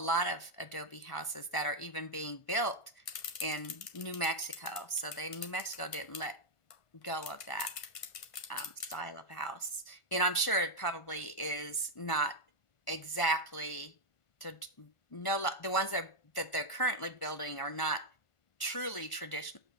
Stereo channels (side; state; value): right; late; 1.5 ms